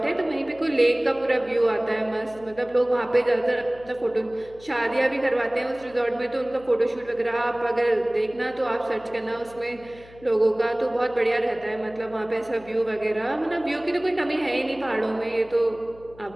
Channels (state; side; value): noise; left; hum, 23 dB below the sound